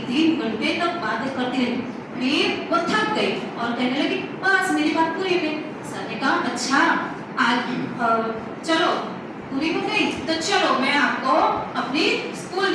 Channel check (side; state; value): both; identical; correlation 1.00